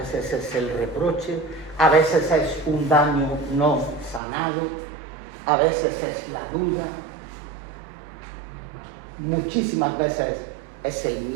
es el reproche, a veces es un daño no sanado, a veces es la duda, muchísimas veces es el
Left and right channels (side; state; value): left; drops out; at 4.2 s